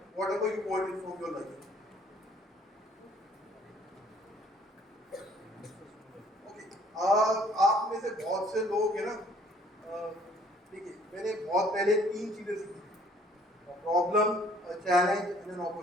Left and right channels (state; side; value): normal; both; correlation 0.59